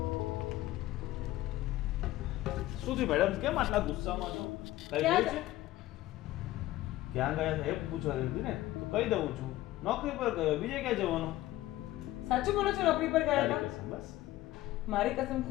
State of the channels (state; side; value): quieter; right; 16.1 dB